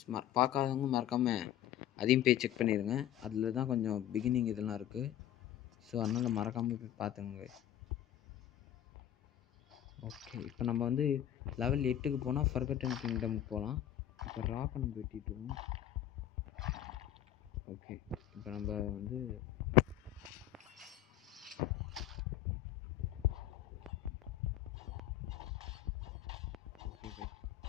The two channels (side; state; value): right; quieter; 11.9 dB